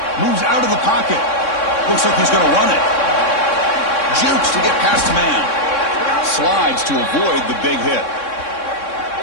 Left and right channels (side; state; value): right; late; 3.6 ms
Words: Moves out of the pocket. Looks like he's going to run it. Jukes to get past the man. Slides to avoid the big hit.